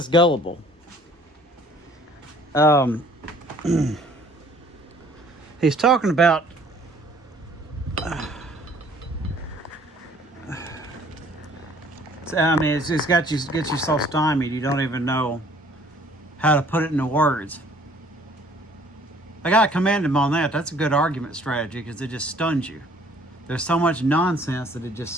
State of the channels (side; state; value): both; normal; correlation 0.56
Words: gullible? He's talking about I mean, it's gets you so stymied you don't even know how to put it into words. I gotta commend him on that. That's a good argument strategy because it just stuns you. There's so much nonsense that it